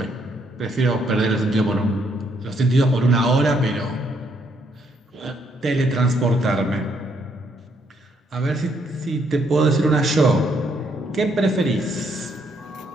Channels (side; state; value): both; normal; correlation 0.72